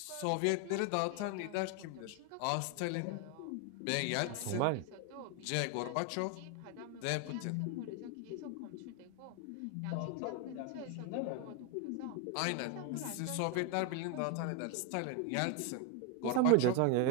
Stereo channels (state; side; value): different; both; correlation 0.01